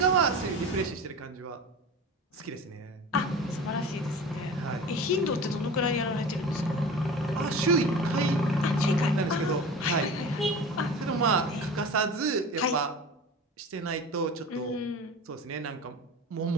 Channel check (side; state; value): both; normal; correlation 0.34